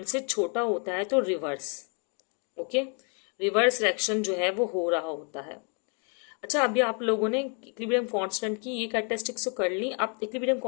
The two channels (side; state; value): right; quieter; 39.0 dB